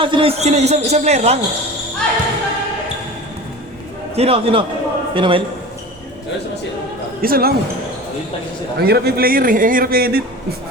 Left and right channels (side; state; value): both; normal; correlation 0.35